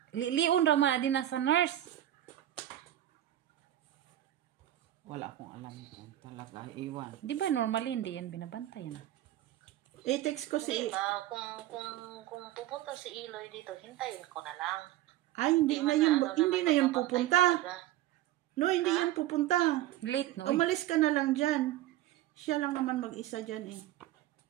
Lion raman din na sa nurse. Wala akong alam kung talaga iiwan. Di ba normally hindi yan binabantayan? I-text ko Hindi ba, kung pupunta si Iloy dito, hintayin ko na lang. Ay, hindi na yun pupunta. No, hindi yan pupunta. Late no? Umalis ka na lang dyan. Siya lang naman mag-isa dyan eh.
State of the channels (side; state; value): left; quieter; 13.7 dB